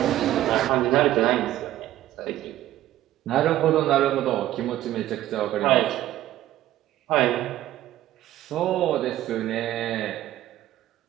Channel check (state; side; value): quieter; left; 13.8 dB